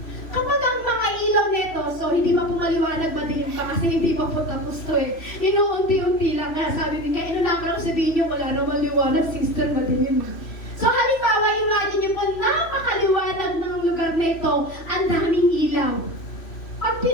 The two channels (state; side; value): late; right; 3.0 ms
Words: kapag ang mga ilaw nito, so hindi pa po maliwanag, madilim pa kasi hindi pa po tapos to eh. Inuunti-unti lang nga, sabi niya, inunakan lang sabihin niyo, wala naman liwanag, sister, madilim. So, halimbawa, imagine niyo po, napakaliwanag ng lugar nito, ang daming ilaw. Pag